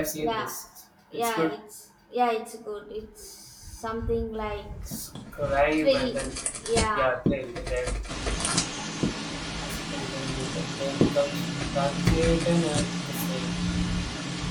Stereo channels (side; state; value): both; identical; correlation 1.00